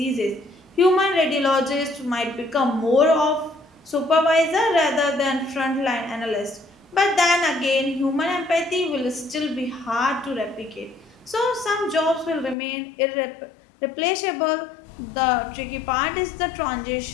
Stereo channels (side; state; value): right; drops out; at 12.6 s